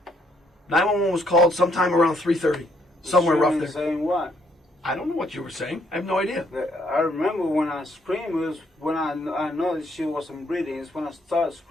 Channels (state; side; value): normal; both; correlation 0.71